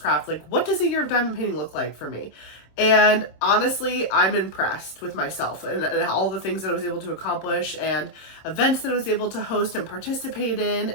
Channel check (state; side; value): late; right; 26 ms